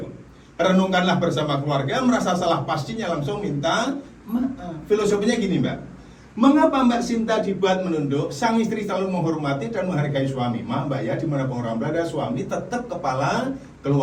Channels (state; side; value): identical; both; correlation 1.00